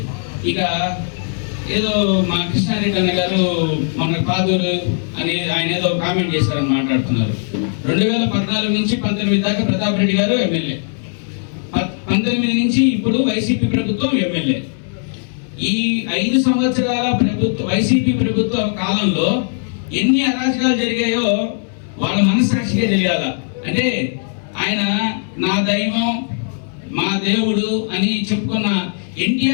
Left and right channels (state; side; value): silent; right; 67 dB below the other